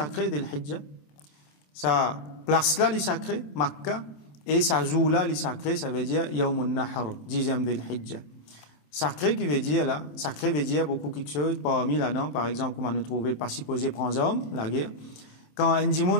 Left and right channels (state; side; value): late; right; 27 ms